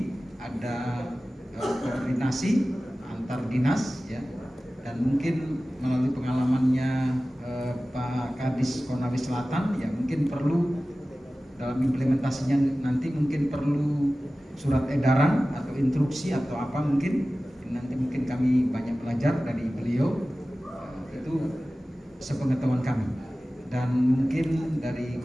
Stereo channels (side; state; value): both; normal; correlation 0.96